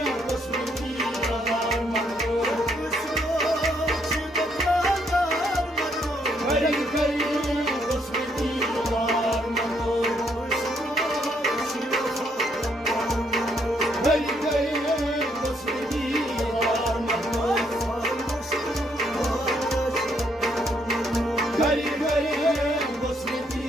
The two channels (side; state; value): both; normal; correlation 0.72